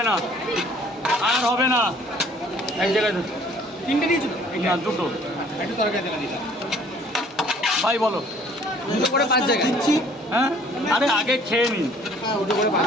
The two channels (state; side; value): normal; both; correlation 0.56